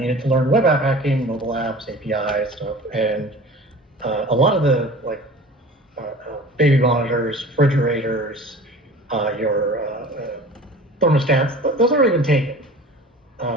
to learn web app hacking, mobile apps, APIs, stuff, and a lot of the baby monitors, refrigerators, your thermostats, those aren't even taken.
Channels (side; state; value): both; normal; correlation 0.41